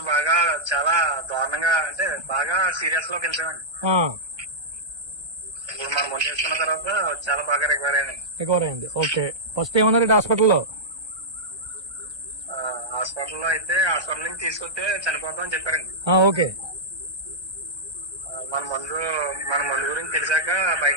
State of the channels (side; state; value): left; late; 1.3 ms